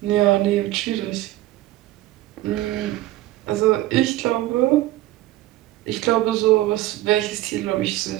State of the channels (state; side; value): quieter; left; 16.0 dB